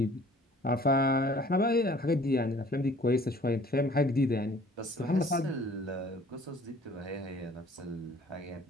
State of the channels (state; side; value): normal; both; correlation 0.52